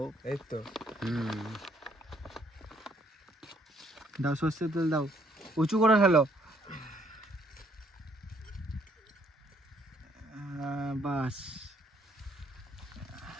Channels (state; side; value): normal; both; correlation 0.67